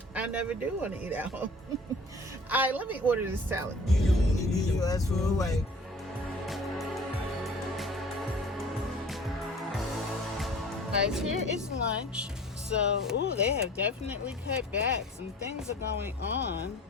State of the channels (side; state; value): both; normal; correlation 0.46